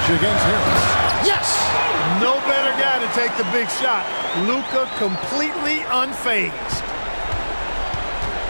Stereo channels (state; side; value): inverted; both; correlation -1.00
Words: against Harris. Yes! No better guy to take the big shot. Luka completely unfazed.